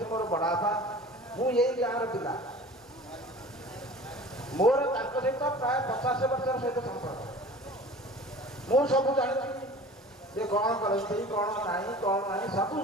मोर बड़ापा मु यही गाँव पिला मोर सहित प्राय 50 वर्ष सहित संपर्क मु सब जानी जे कौन करती कौन नहीं कौन नहीं सब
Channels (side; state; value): both; normal; correlation 0.42